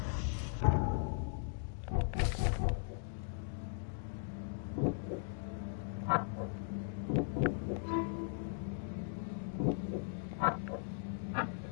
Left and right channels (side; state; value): right; silent; digital silence